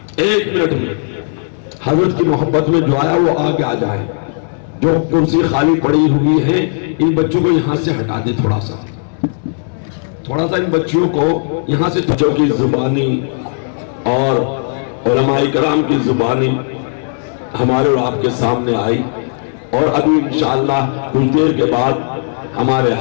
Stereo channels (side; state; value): right; silent; 69 dB below the other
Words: میں حضرت کی محبت میں جو آیا وہ آگے آ جائے. جو کرسی خالی پڑی ہوئی ہے ان بچوں کو یہاں سے ہٹا دے. تھوڑا سا ان بچوں کو یہاں سے. بچوں کی زبانی اور علماء کرام کی زبانی ہمارے اور آپ کے سامنے آئی، اور ابھی انشاءاللہ کچھ دیر کے بعد ہمارے